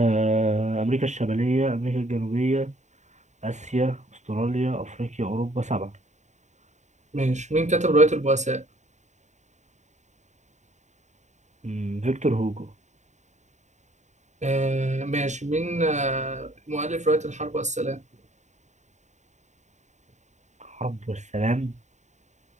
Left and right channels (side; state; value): left; late; 0.34 ms